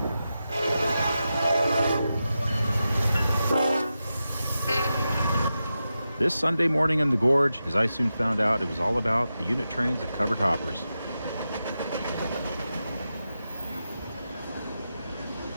This Sunday morning in the Gorge, as I soon found out, it was all about the unit trains of covered hoppers.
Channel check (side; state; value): both; inverted; correlation -0.90